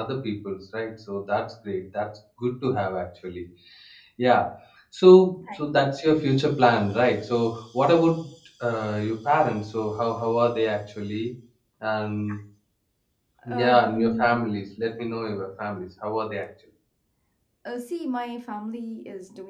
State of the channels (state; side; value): identical; both; correlation 1.00